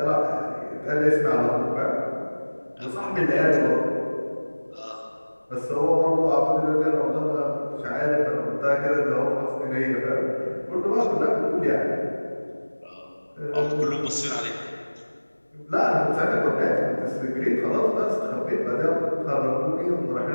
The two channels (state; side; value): inverted; both; correlation -1.00